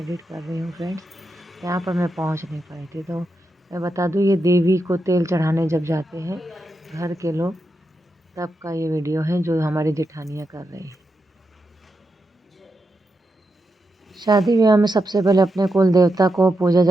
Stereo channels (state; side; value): normal; both; correlation 0.86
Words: कर रही हूँ फ्रेंड्स। यहाँ पर मैं पहुँच नहीं पाई थी। तो मैं बता दूँ, ये देवी को तेल चढ़ाने जब जाते हैं घर के लोग, तब का ये वीडियो है जो हमारी जेठानियाँ कर रही हैं। शादी ब्याह में सबसे पहले अपने कुल देवता को पूजा